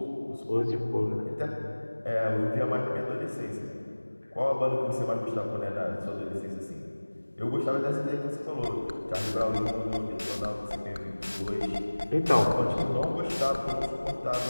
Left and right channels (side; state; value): both; inverted; correlation -1.00